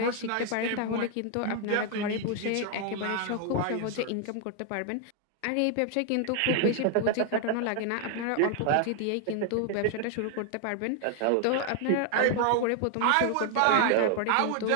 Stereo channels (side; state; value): both; different; correlation 0.00